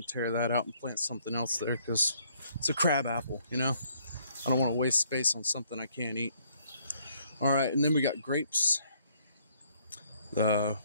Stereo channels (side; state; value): both; inverted; correlation -0.66